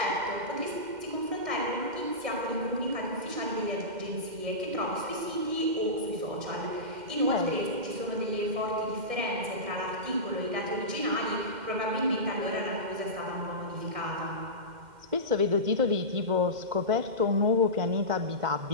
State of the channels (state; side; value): late; left; 2.1 ms